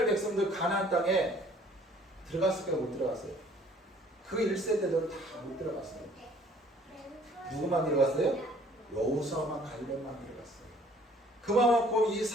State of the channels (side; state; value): both; normal; correlation 0.56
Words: 백성들 가나안 땅에 들어갔을까요? 못 들어갔어요? 그 1세대들은 다 못 들어갔어요. 누구만 들어갔어요? 여호수아만 갈렙만 들어갔어요. 그만큼 이